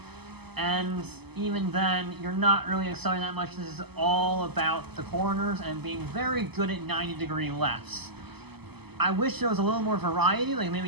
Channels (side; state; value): left; late; 0.97 ms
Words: and even then, you're not really accelerating that much. This is all about the corners and being very good at 90-degree lefts. I wish there was a little more variety, like